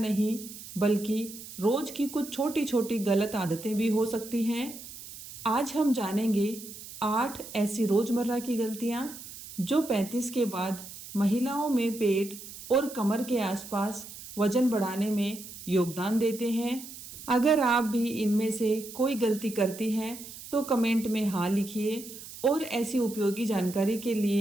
बल्कि रोज़ की कुछ छोटी छोटी गलत आदतें भी हो सकती हैं। आज हम जानेंगे 8 ऐसी रोज़मर्रा की गलतियाँ जो 35 के बाद महिलाओं में पेट और कमर के आसपास वजन बढ़ाने में योगदान देते हैं। अगर आप भी इनमें से कोई गलती करती हैं तो कमेंट में हाँ लिखिए और ऐसी उपयोगी जानकारी के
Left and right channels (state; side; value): noise; right; hiss, 14 dB below the sound